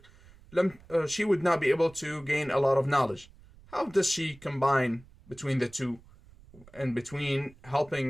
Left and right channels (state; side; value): noise; right; rumble, 24 dB below the sound